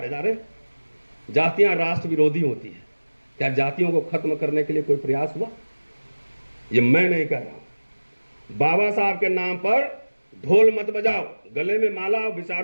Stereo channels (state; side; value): inverted; both; correlation -1.00